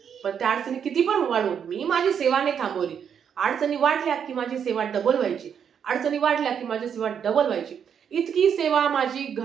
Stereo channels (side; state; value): left; quieter; 7.8 dB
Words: पण त्या अडचणी किती पण वाढून मी माझी सेवा नाही थांबवली. अडचणी वाढल्या की माझी सेवा डबल व्हायची. अडचणी वाढल्या की माझी सेवा डबल व्हायची. इतकी सेवा माझी